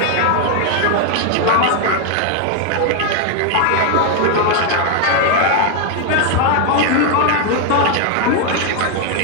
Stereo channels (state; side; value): different; both; correlation 0.01